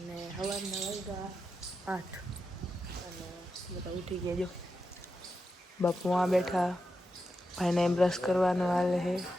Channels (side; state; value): both; normal; correlation 0.88